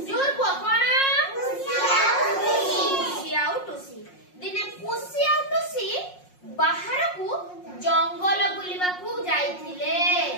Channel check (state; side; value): late; right; 5.5 ms